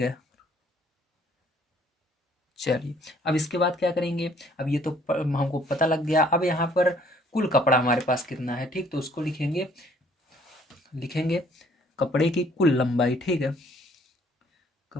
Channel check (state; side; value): normal; both; correlation 0.60